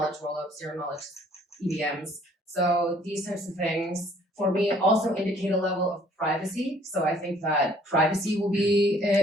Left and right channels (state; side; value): normal; both; correlation 0.59